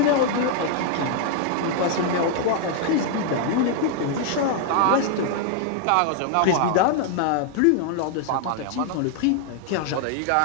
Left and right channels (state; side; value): different; both; correlation 0.00